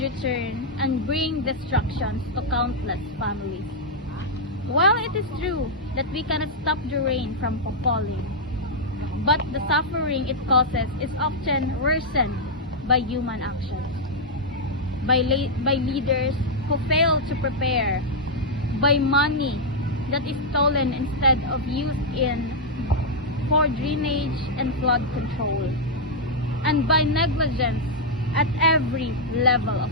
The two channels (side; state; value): both; normal; correlation -0.04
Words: return and bring destructions to countless families. While it is true that we cannot stop the rain from falling, but the suffering it causes is often worsened by human actions, by leaders who fail to prepare, by money that is stolen instead of used for drainage and flood control, and by negligence at every level of